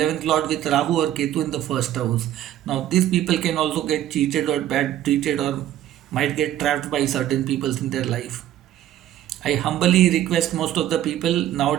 lord with Rahu or Ketu in the 1st house. Now these people can also get cheated or bad treated or might get trapped by certain people in their life. I humbly request most of the people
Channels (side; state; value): left; quieter; 12.4 dB